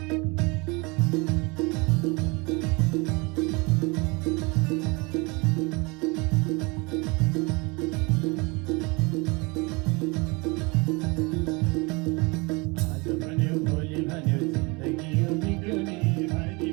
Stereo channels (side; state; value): left; quieter; 27.6 dB